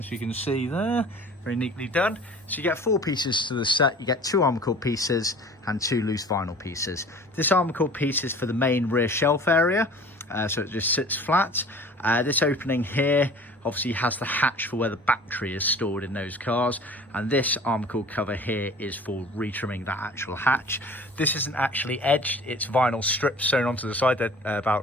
you can see there, very neatly done. So you get 4 pieces to the set. You get 2 Armacord pieces and 2 loose vinyl pieces. This Armacord piece is for the main rear shelf area, so it just sits flat. This opening here obviously has the hatch for where the battery is stored in those cars, and this Armacord cover here is for retrimming that actual hatch. This isn't actually edged, it's vinyl strips sewn onto the side. They're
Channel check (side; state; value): both; normal; correlation 0.45